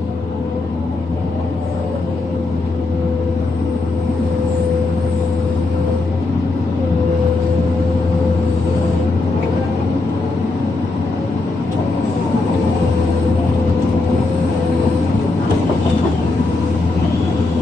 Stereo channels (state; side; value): quieter; right; 3.3 dB